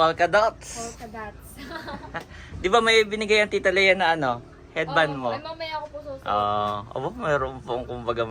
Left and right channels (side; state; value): both; identical; correlation 1.00